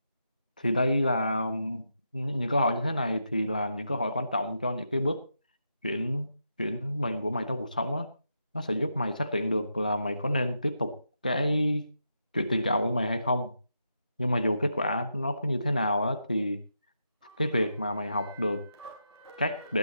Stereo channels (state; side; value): inverted; both; correlation -0.84